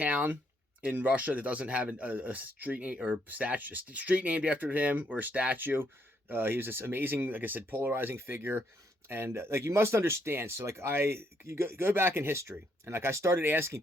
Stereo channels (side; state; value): both; normal; correlation 0.73